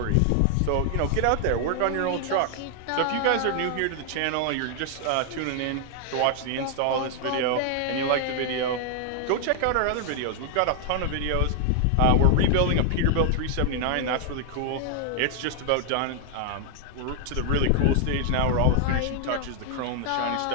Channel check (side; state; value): both; different; correlation 0.00